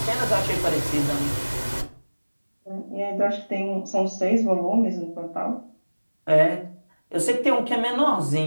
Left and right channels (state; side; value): inverted; both; correlation -1.00